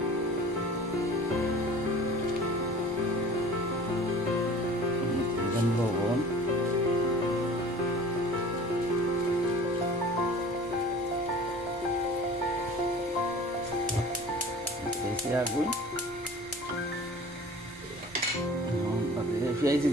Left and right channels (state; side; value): noise; left; rumble, 23 dB below the sound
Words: লবণ আগুন পেঁয়াজ